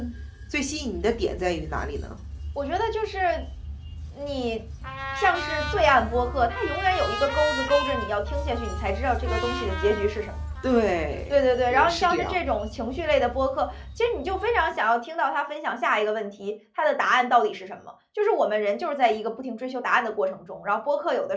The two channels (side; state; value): both; identical; correlation 1.00